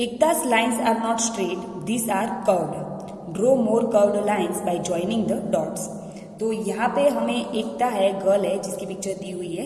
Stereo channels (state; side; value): identical; both; correlation 1.00